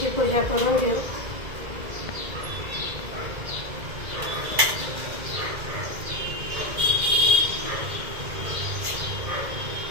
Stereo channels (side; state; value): left; late; 2.1 ms